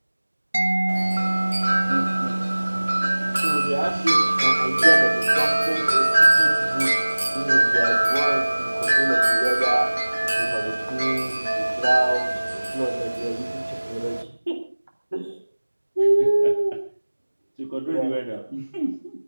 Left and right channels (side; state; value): both; inverted; correlation -1.00